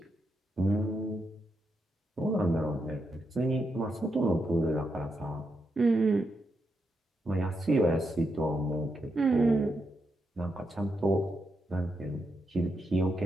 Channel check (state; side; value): normal; both; correlation 0.83